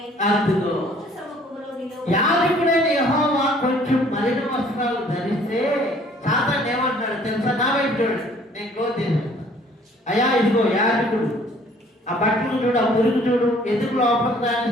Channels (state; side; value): normal; both; correlation 0.57